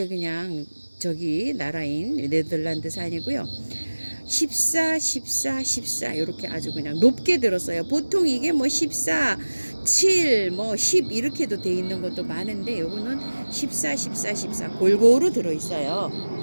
그냥 저기 나라인 네덜란드산이고요. 14, 14, 14 이렇게 아주 그냥 높게 들었어요. 보통 이게 뭐 14, 7, 뭐 10 이렇게도 돼 있는 것도 많은데 요거는 14, 14, 14 골고루 들어있어요.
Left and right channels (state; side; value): inverted; both; correlation -1.00